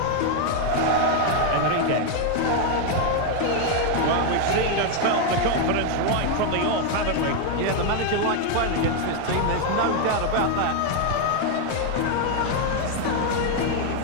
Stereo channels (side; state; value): both; different; correlation 0.01